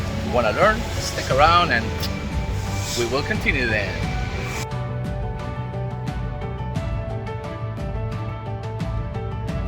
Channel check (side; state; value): both; identical; correlation 1.00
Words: you wanna learn, stick around and we will continue then.